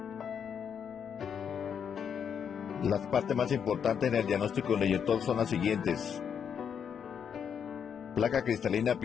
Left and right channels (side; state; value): right; quieter; 7.6 dB